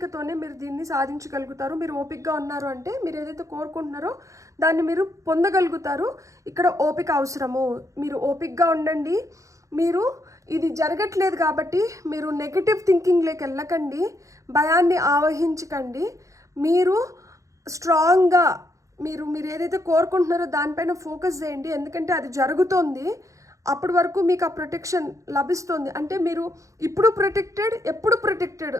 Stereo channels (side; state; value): left; late; 0.15 ms